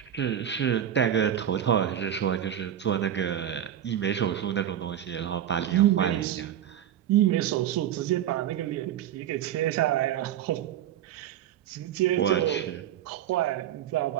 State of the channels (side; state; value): left; quieter; 10.6 dB